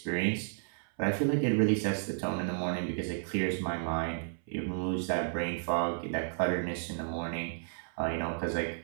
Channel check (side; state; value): left; silent; 56 dB below the other